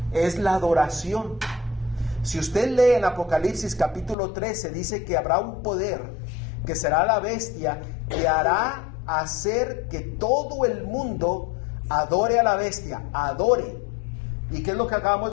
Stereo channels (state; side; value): drops out; right; at 4.2 s